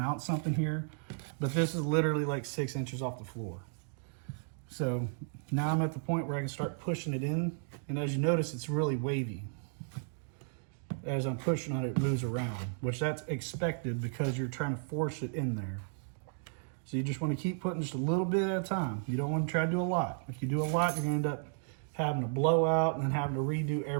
something here. But this is literally like 6 inches off the floor. So now I'm at the point where I can start pushing it in. And as you notice, it's really wavy. As I'm pushing on it, it moves around, which that's expected because you're trying to force it in there. So you just want to keep putting just a little bit at a time. You don't want to try to do a lot. If you do a lot, you're going to end up having to blow out and then having to redo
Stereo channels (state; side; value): silent; left; digital silence